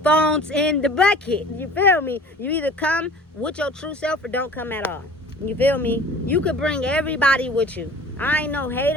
Phones in the bucket. You feel me? You either come with your true self or don't come at all. You feel me? You could bring everybody with you. I ain't no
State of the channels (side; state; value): both; normal; correlation 0.45